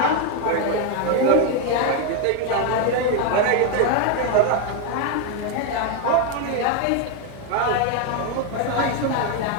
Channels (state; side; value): different; both; correlation 0.01